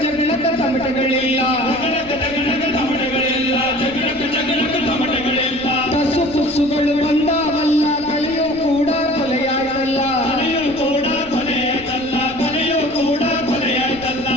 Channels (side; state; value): right; noise; rumble, 20 dB below the sound